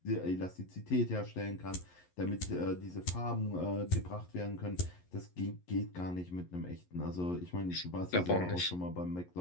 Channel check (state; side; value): late; right; 11 ms